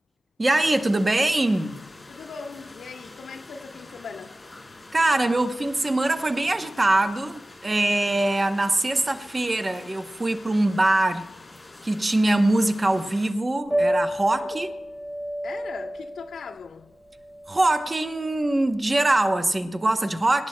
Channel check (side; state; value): both; normal; correlation 0.97